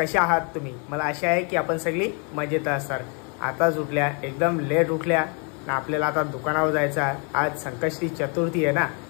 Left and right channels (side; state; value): right; quieter; 36.7 dB